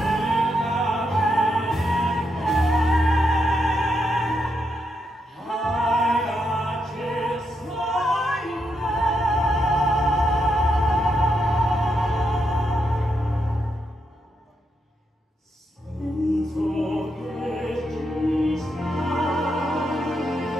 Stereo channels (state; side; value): normal; both; correlation 0.81